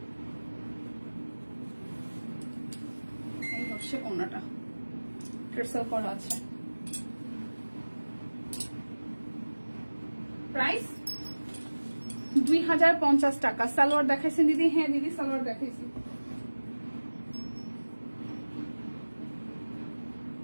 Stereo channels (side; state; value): both; inverted; correlation -1.00